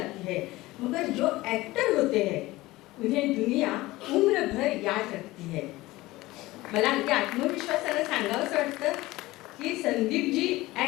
है, मगर जो एक्टर होते हैं उन्हें दुनिया उम्र भर याद रखती है. मला अगदी आत्मविश्वासाने सांगावंच वाटतं की संदीपजी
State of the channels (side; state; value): right; quieter; 18.9 dB